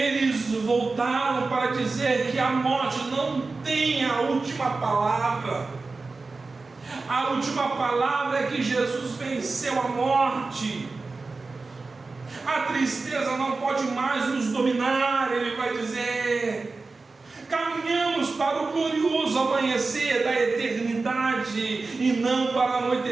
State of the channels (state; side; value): quieter; left; 3.8 dB